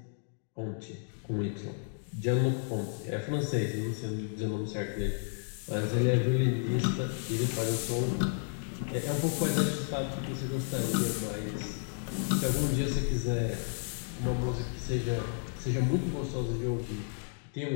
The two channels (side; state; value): right; silent; digital silence